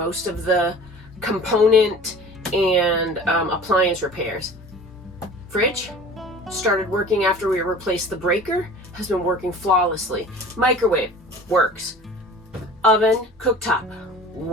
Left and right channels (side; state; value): both; normal; correlation 0.43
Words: of the component and appliance repairs. Fridge started working after we replaced the breaker, has been working flawlessly. Microwave works. Oven, cooktop